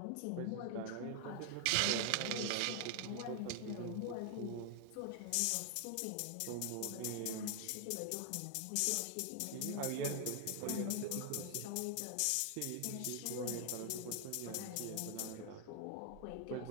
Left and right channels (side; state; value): both; different; correlation 0.00